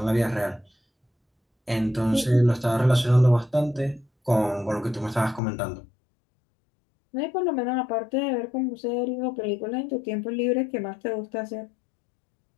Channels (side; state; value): right; drops out; at 5.4 s